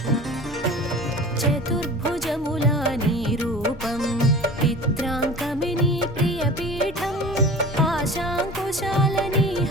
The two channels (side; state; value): both; normal; correlation 0.38